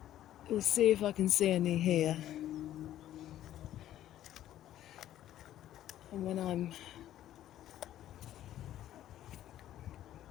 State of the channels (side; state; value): right; quieter; 12.5 dB